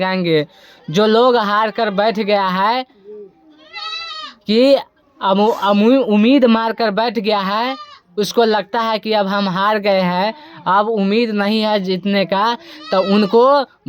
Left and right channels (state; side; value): identical; both; correlation 1.00